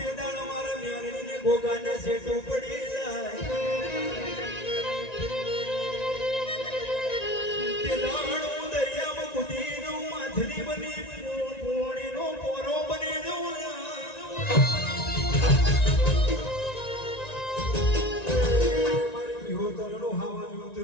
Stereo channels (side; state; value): right; late; 1.9 ms